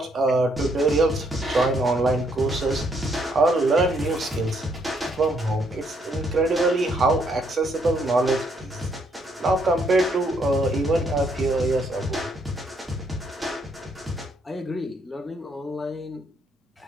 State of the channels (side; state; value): both; normal; correlation 0.71